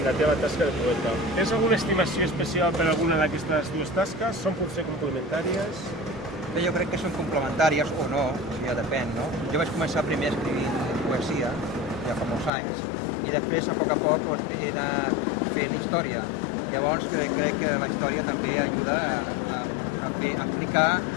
la teva tasca de poeta. Tens alguna estimació especial per alguna d'aquestes dues tasques? Són potser complementàries? Bé, jo crec que són complementàries o no, ja depèn, no? Jo vaig començar primer escrivint poesia, ja fa molts anys, i després, a poc, he anat fent història. Llavors, crec que la història també ajuda a explicar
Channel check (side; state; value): right; drops out; at 12.5 s